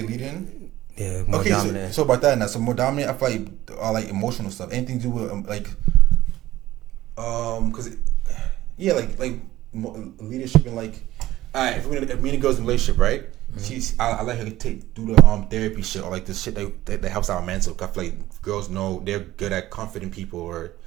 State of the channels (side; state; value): left; quieter; 15.5 dB